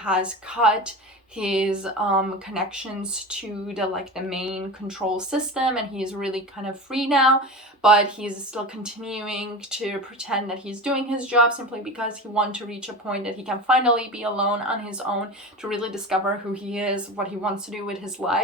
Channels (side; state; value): both; normal; correlation 0.29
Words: cut his connections to the main control system, and he's really kind of free now. But he's still continuing to pretend that he's doing his job simply because he wants to reach a point that he can finally be alone on his own to really discover who he is, what he wants to do with his